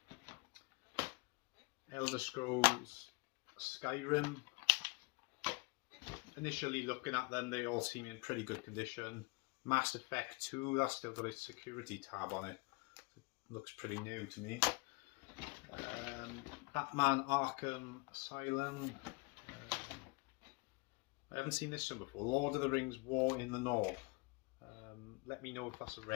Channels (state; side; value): quieter; right; 28.6 dB